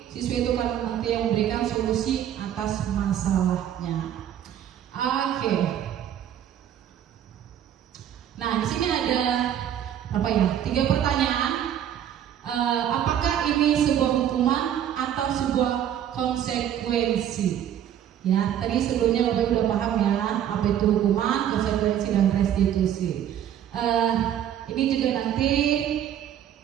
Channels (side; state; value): left; quieter; 10.3 dB